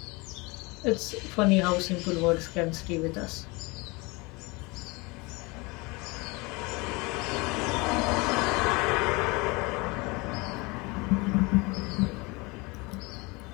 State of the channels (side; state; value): right; quieter; 26.0 dB